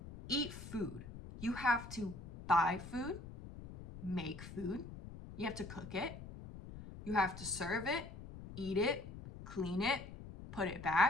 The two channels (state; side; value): noise; left; rumble, 12 dB below the sound